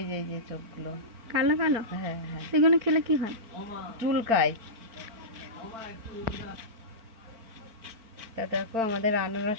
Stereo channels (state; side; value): late; left; 4.4 ms